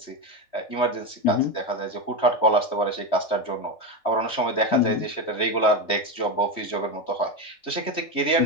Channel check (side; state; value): right; late; 3.1 ms